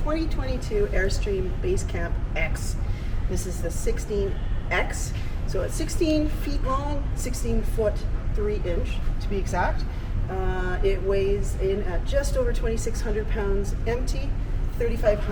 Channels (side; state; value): both; identical; correlation 1.00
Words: Airstream Basecamp X. This is the 16X, so it's 16 feet long, 16 foot 3 inch to be exact. It weighs in at just over 2,600 pounds empty,